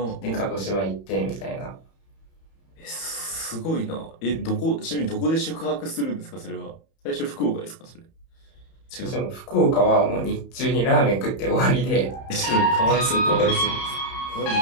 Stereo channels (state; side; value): late; right; 31 ms